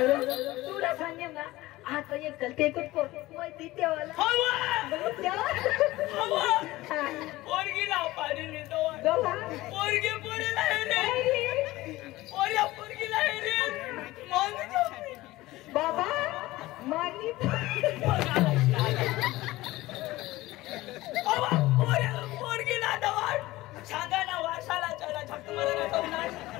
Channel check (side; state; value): right; quieter; 18.3 dB